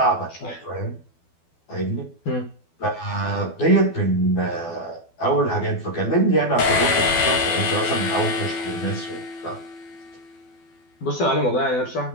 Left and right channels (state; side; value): late; right; 12 ms